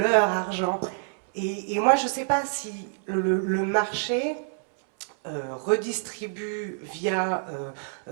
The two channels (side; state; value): left; silent; 60 dB below the other